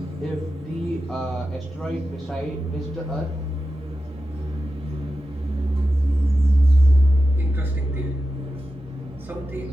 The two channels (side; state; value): both; normal; correlation 0.92